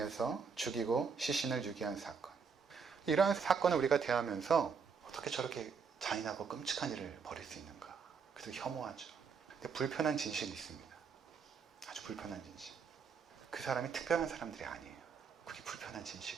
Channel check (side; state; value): left; quieter; 5.8 dB